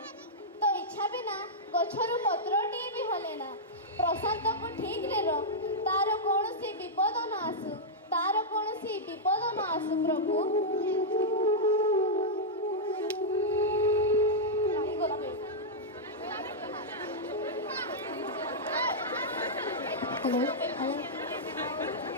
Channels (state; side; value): normal; both; correlation -0.08